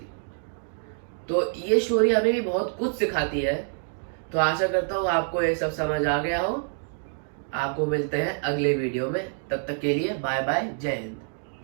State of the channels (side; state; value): left; silent; digital silence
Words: तो ये स्टोरी हमें भी बहुत कुछ सिखाती है। तो आशा करता हूँ आपको ये सब समझ आ गया हो। आपको मिलते हैं अगले वीडियो में, तब तक के लिए बाय बाय, जय हिंद।